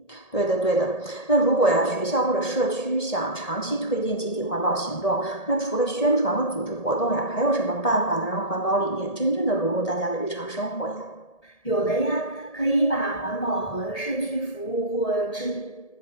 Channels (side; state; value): right; late; 1.8 ms